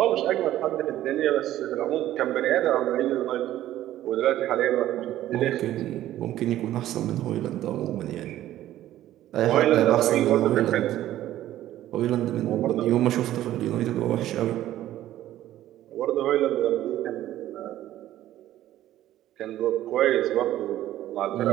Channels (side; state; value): left; quieter; 13.5 dB